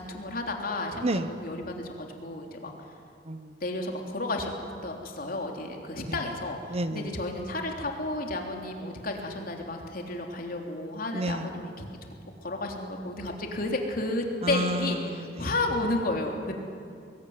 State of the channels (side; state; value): both; normal; correlation 0.23